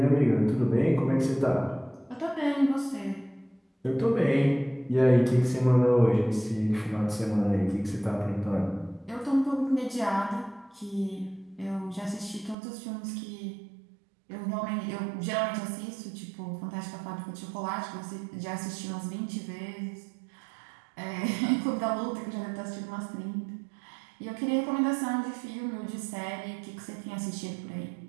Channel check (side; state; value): left; drops out; at 12.6 s